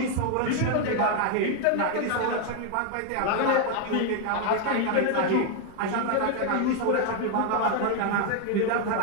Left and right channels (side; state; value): both; different; correlation 0.01